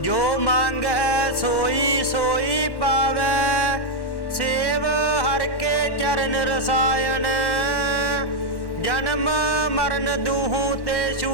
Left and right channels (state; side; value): late; right; 1.1 ms